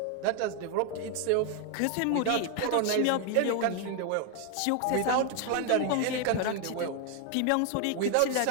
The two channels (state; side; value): different; both; correlation 0.01